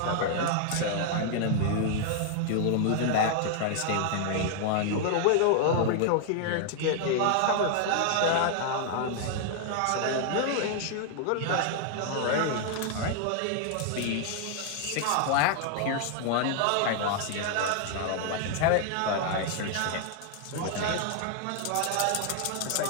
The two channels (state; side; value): different; both; correlation 0.00